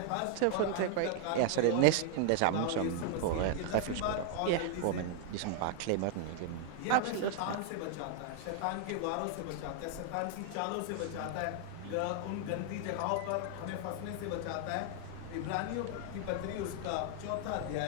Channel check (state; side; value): different; both; correlation 0.00